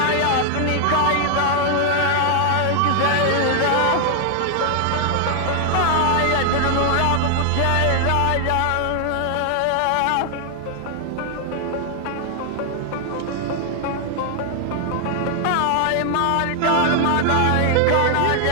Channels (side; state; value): both; different; correlation 0.00